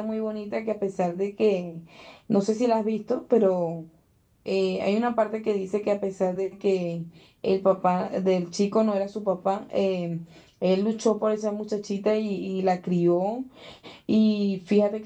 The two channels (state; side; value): identical; both; correlation 1.00